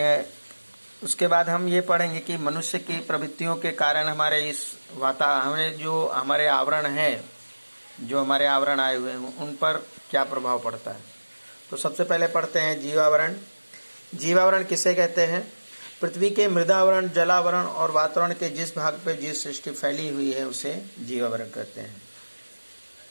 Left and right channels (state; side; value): inverted; both; correlation -1.00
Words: उसके बाद हम ये पढ़ेंगे कि मनुष्य की प्रवृत्तियों के कारण हमारे इस हमें जो हमारे आवरण है, जो हमारे आवरण आए हुए हैं उन पर क्या प्रभाव पड़ता है। तो सबसे पहले पढ़ते हैं जीवावरण। जीवावरण किसे कहते हैं? पृथ्वी के मृदावरण, जलावरण और वातावरण के जिस भाग पर जीव सृष्टि फैली हुई है उसे जीवावरण कहते हैं।